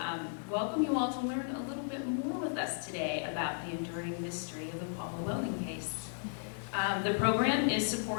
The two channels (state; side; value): silent; right; 55 dB below the other